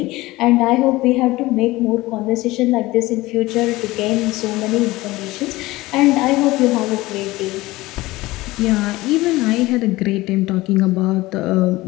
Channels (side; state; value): right; quieter; 19.3 dB